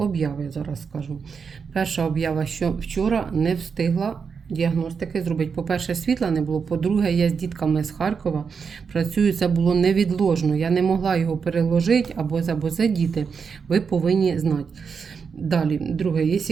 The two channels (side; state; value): left; quieter; 5.9 dB